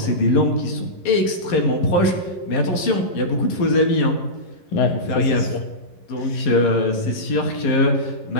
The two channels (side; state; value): right; late; 11 ms